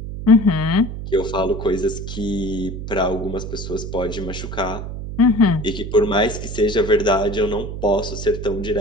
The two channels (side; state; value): right; noise; hum, 7 dB below the sound